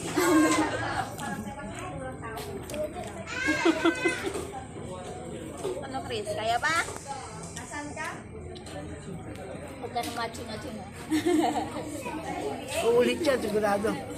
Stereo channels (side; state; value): both; identical; correlation 1.00